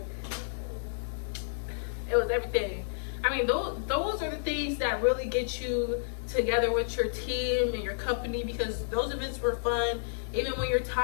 It was everything. I mean, those are the things that really get you together with your team and your company, because those events were fun. Even when you're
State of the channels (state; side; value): silent; right; digital silence